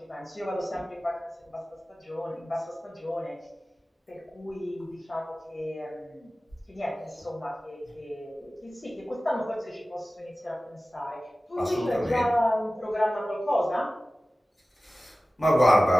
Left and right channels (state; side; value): normal; both; correlation 0.97